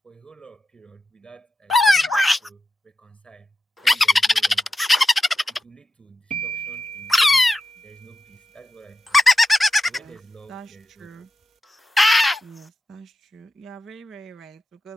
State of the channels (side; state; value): both; normal; correlation 0.89